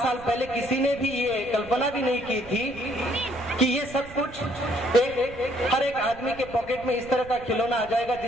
पहले किसी ने भी ये कल्पना भी नहीं की थी कि ये सब कुछ हर एक आदमी के पॉकेट में इस तरह का खिलौना आ जाएगा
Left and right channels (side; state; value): right; noise; rumble, 17 dB below the sound